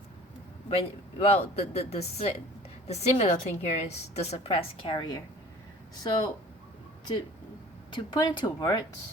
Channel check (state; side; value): normal; both; correlation 0.46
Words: when, well, the similar thing here is the suppressed carrier. So to put into